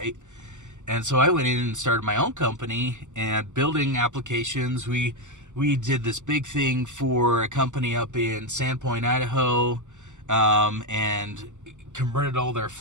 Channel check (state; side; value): late; left; 0.85 ms